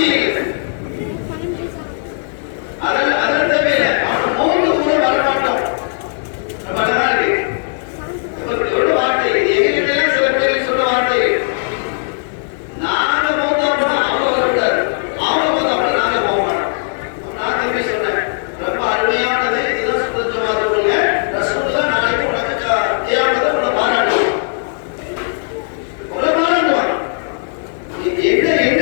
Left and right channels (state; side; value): silent; right; digital silence